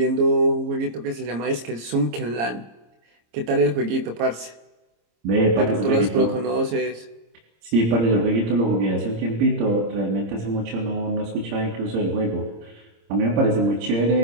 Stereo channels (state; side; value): late; left; 26 ms